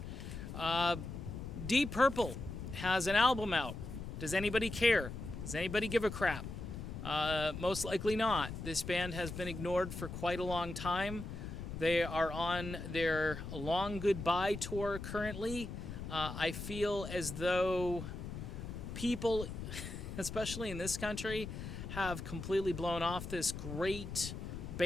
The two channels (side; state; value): left; noise; rumble, 8 dB below the sound